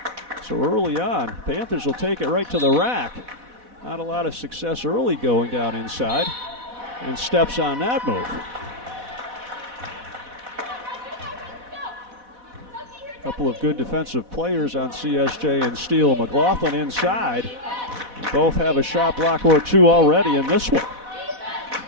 So early on, Panthers will take it right to the rack. Not a lot of success early going down inside, and steps on that move. A couple of good defensive players on CSJ and Steele. McLaughlin inside. And both have a shot block or two already in this one.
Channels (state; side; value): late; left; 4.1 ms